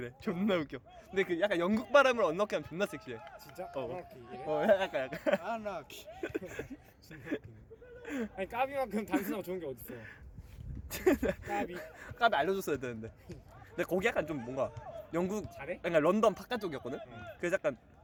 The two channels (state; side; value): identical; both; correlation 1.00